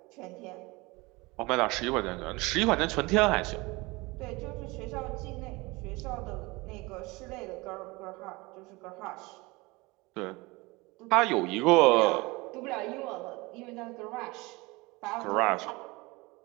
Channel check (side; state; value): left; quieter; 23.7 dB